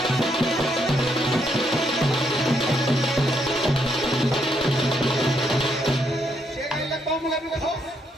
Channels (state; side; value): normal; both; correlation 0.76